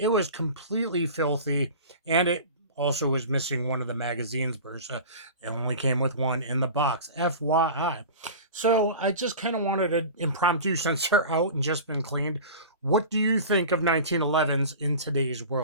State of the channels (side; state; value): both; inverted; correlation -0.35